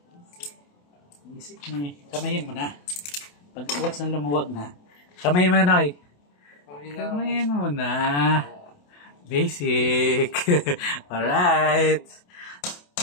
Basic ni. Kamayin mo na. Pag once na lumuwag na. Kamayin mo na, Noy. Kamayin mo na. Basic. Alright.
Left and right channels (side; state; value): right; late; 28 ms